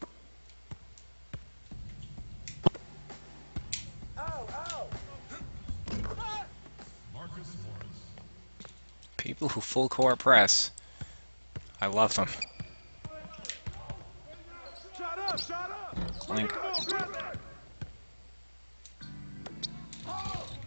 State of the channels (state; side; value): inverted; both; correlation -1.00